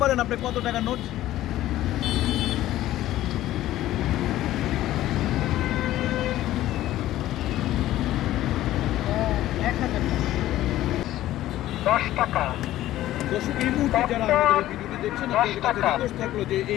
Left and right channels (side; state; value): right; quieter; 14.4 dB